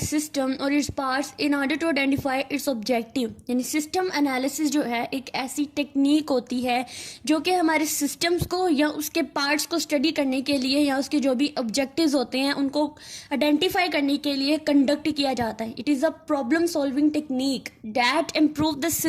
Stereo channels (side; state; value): both; identical; correlation 1.00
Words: or its parts in order to identify its objective. यानी system analysis जो है एक ऐसी technique होती है जो कि हमारे सिस्टम्स को या उसके पार्ट्स को स्टडी करने के लिए या उसके जो भी ऑब्जेक्टिव्स होते हैं उनको आइडेंटिफाई करने के लिए कंडक्ट किया जाता है. It is a problem solving technique that improve the